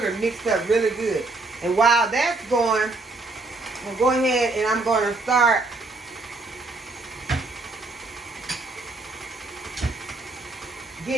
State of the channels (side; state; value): left; quieter; 3.3 dB